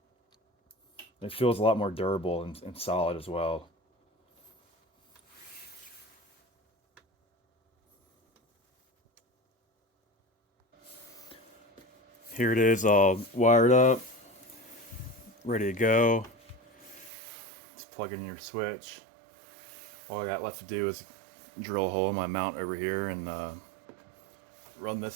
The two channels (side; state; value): left; drops out; at 17.1 s